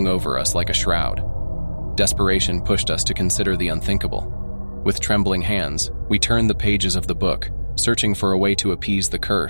over us like a shroud. Desperation pushed us to consider the unthinkable. With trembling hands, we turned the pages of the book, searching for a way to appease the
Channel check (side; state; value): both; inverted; correlation -1.00